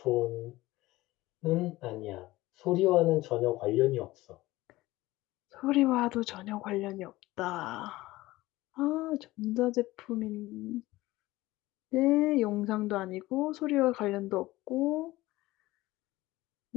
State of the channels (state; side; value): quieter; right; 18.4 dB